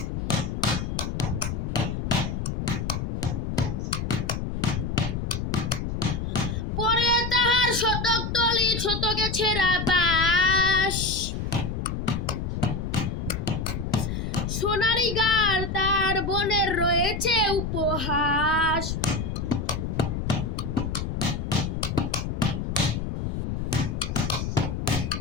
পরে তাহার শতক তলি শতকে ছেঁড়া বাস, সোনারি গার তার বোনের রয়েছে উপহাস।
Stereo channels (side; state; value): left; noise; rumble, 3 dB below the sound